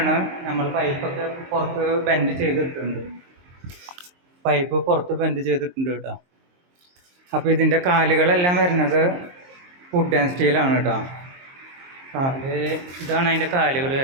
നമ്മൾ പൈപ്പൊക്കെ പുറത്ത് ബെൻഡ് ചെയ്തിട്ടുണ്ട്. പൈപ്പ് പുറത്ത് ബെൻഡ് ചെയ്തിട്ടുണ്ട് കേട്ടോ. അപ്പോൾ ഇതിൻ്റെ കാലുകളെല്ലാം വരുന്നത് വുഡ് ആൻഡ് സ്റ്റീലാണ് കേട്ടോ. ഇതാണ് അതിൻ്റെ കാലുകൾ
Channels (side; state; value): left; late; 23 ms